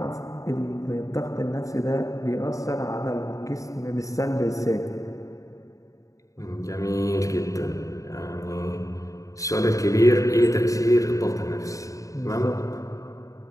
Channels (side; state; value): right; late; 0.16 ms